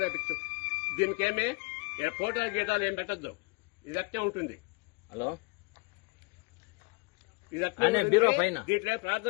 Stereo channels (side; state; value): right; quieter; 29.4 dB